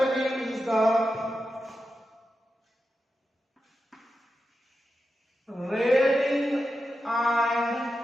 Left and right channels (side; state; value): both; normal; correlation 0.90